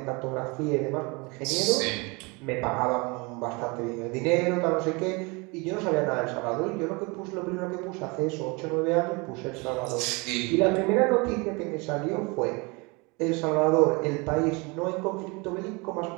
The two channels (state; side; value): quieter; left; 28.0 dB